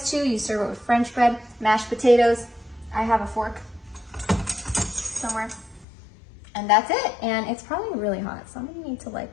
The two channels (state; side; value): drops out; right; at 5.9 s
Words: too. You serve it with French bread, mashed potatoes. I have a fork somewhere. And that's it. And it's probably really hot, so I'm gonna need to